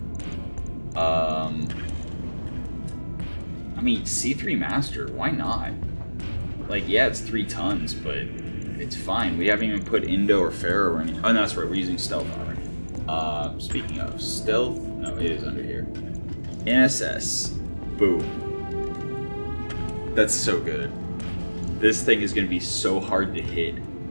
I mean, C3 Master, why not? Like, yeah, it's 3 tons, but it's fine. We haven't even put Indo or Pharaoh or anything. Oh, no, that's right, we're using stealth armor. Speaking of stealth, no, it is under here. NSS, boom. That's so good. This thing is going to be so hard to hit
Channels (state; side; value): inverted; both; correlation -1.00